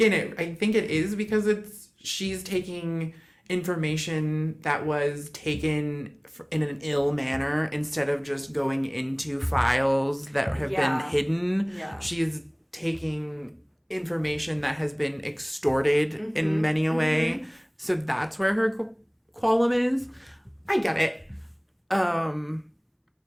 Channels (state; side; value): identical; both; correlation 1.00